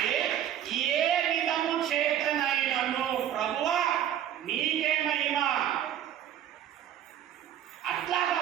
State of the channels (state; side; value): quieter; left; 10.6 dB